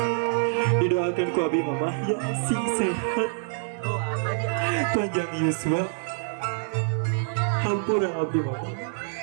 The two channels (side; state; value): left; silent; 56 dB below the other